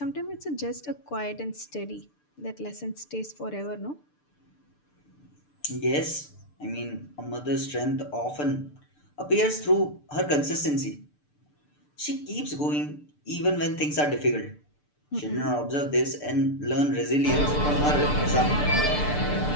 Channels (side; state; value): right; late; 6.8 ms